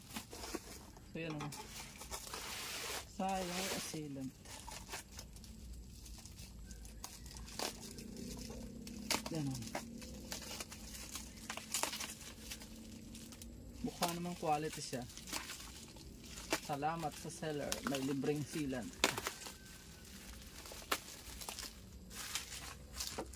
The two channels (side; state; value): both; identical; correlation 1.00